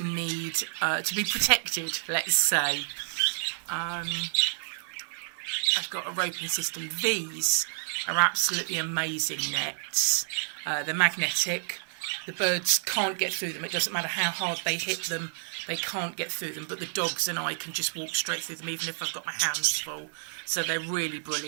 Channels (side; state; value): left; silent; digital silence